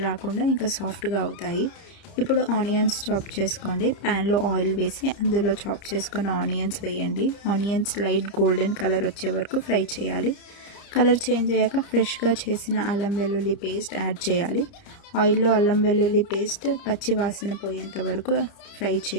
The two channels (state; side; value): late; right; 30 ms